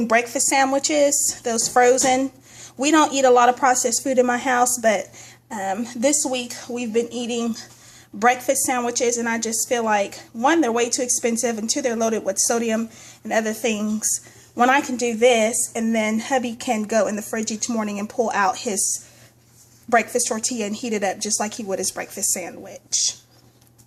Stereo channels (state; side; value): identical; both; correlation 1.00